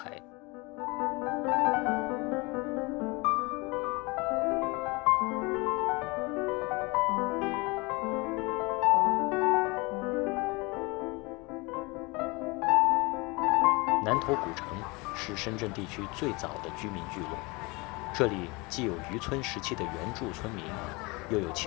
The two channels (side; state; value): right; quieter; 26.0 dB